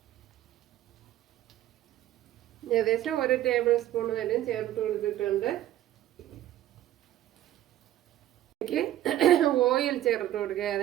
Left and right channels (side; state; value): left; quieter; 13.1 dB